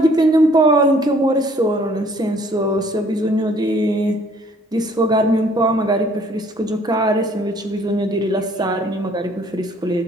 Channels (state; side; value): normal; both; correlation 0.59